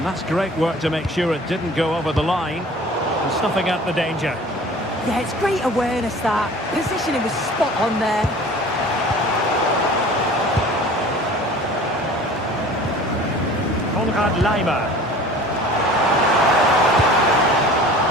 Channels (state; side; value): normal; both; correlation 0.44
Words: that's great work to make sure it didn't go over the line. And snuffing out the danger. Yeah, it's great awareness, that. Positioning was spot on there. Konrad Laimer.